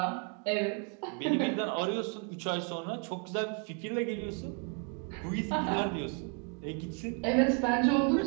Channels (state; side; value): quieter; left; 37.5 dB